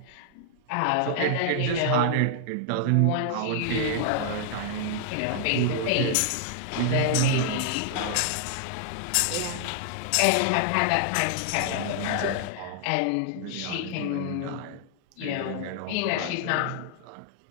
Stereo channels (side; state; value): both; different; correlation -0.01